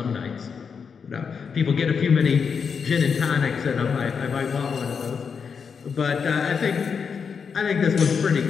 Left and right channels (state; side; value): quieter; right; 6.1 dB